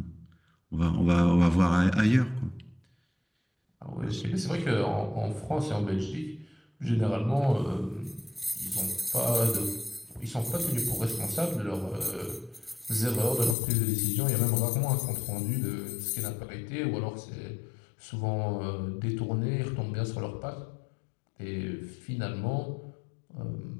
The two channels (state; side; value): drops out; right; at 13.6 s